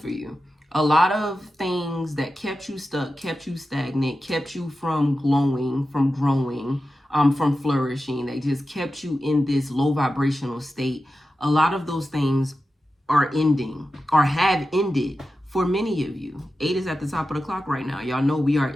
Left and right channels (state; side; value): normal; both; correlation 0.92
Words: you. A lot of things that kept you stuck, kept you stagnant, kept you from glowing, from growing, from flourishing. They just kept you in this low vibrational state. A lot of those things are ending or have ended for many of you. 8 is at the top of the clock right now. Y'all know we are